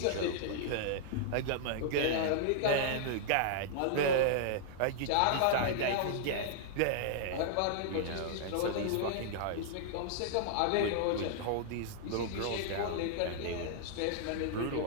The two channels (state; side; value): different; both; correlation -0.01